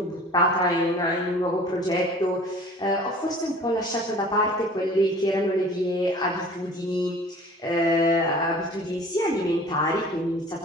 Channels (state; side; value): normal; both; correlation 0.46